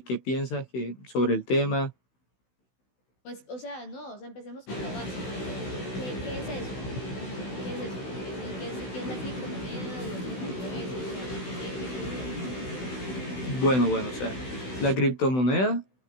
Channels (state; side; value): late; right; 16 ms